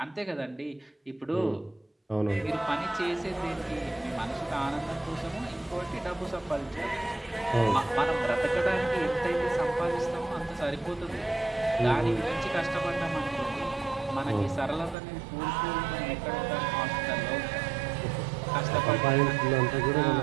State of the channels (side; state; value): left; drops out; at 15.0 s